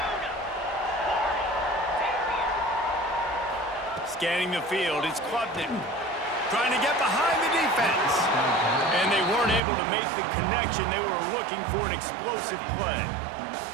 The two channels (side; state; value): left; drops out; at 9.6 s